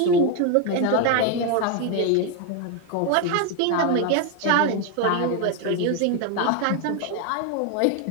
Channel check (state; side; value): different; both; correlation 0.01